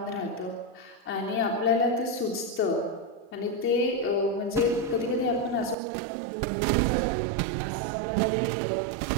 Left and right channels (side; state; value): left; drops out; at 5.8 s